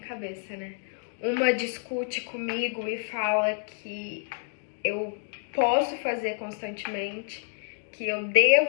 né? Uma discute comigo e fala que eu posso fazer constantemente, que eu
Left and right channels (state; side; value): silent; right; digital silence